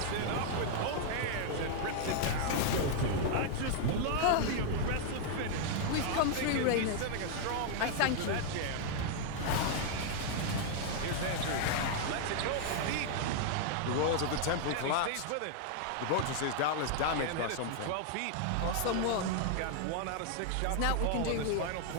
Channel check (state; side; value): different; both; correlation 0.00